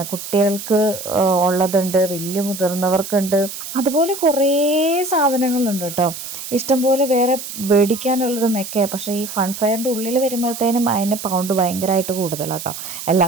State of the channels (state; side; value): noise; right; hiss, 9 dB below the sound